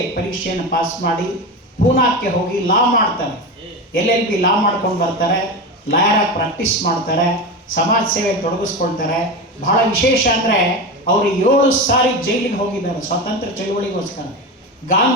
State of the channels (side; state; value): both; normal; correlation 0.22